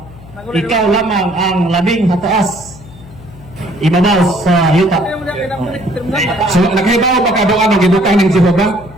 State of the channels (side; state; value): left; noise; hum, 20 dB below the sound